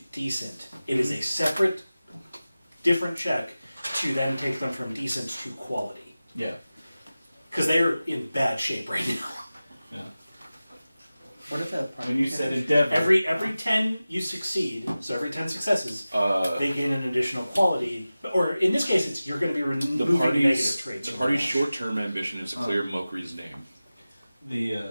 decent. It is a separate, different check to then take them from decent to quality. Yeah. Because they are in bad shape right now. Yeah. What if that part? When you said endeavor. Every 10 you succeed, so every 10 successes, they gain an additional quality. Or in this case, it's you're going to be removing negative traits. The party's short-term ambition is to clear Mokri's name.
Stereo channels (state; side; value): inverted; both; correlation -0.96